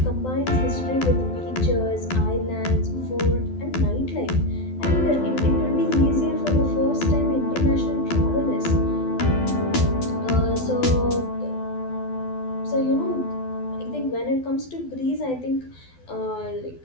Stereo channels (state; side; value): late; right; 12 ms